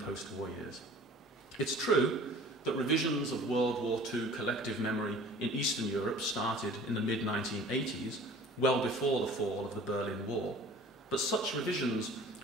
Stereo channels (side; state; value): both; normal; correlation 0.46